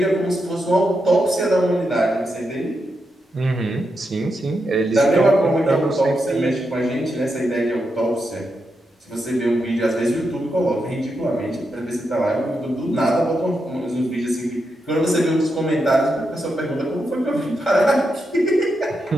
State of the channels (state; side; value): normal; both; correlation 0.85